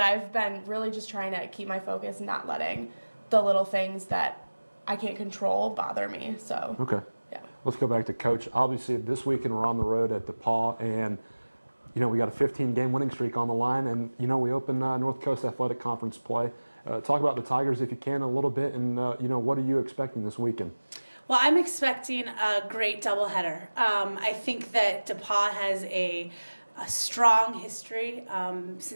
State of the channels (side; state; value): both; inverted; correlation -1.00